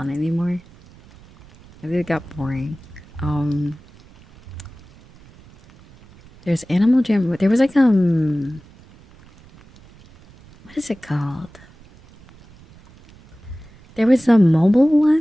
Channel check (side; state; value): right; noise; rumble, 25 dB below the sound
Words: anymore. I think it got boring. There's Animal Jam. There was like what is it called? There was a mobile